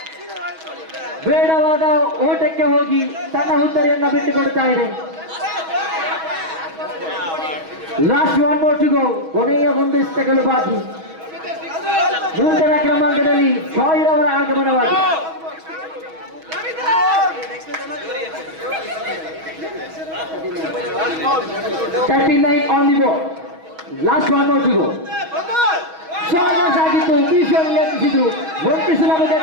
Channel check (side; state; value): left; late; 6.2 ms